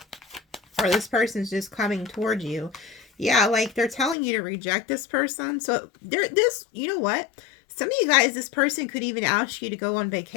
Or this person's just coming towards you. Yeah, like they're telling you to reject this person. So you know what? Some of you guys, this person could even ask you to go on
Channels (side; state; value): right; drops out; at 4.2 s